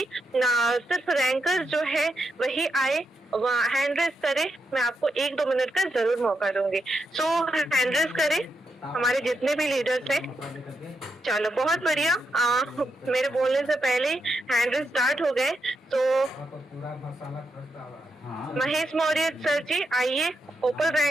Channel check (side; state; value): both; normal; correlation 0.83